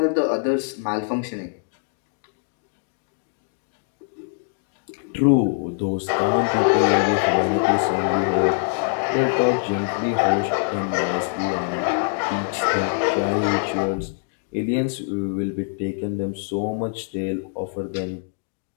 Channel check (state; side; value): silent; right; digital silence